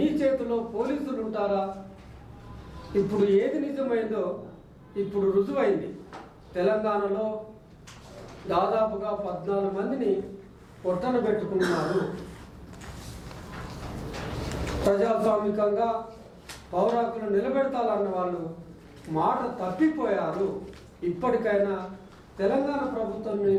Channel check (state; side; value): identical; both; correlation 1.00